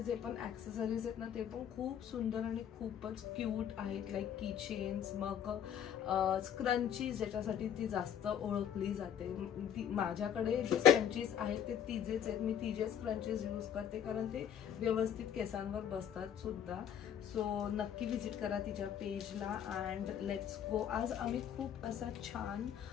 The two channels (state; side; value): quieter; right; 9.2 dB